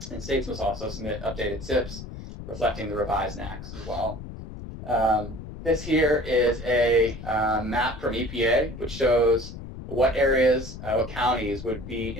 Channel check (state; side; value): noise; left; rumble, 11 dB below the sound